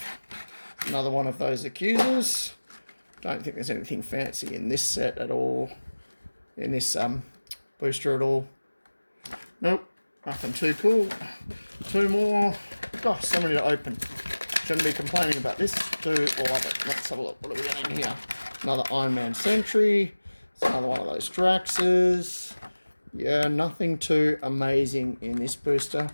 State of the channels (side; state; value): both; inverted; correlation -1.00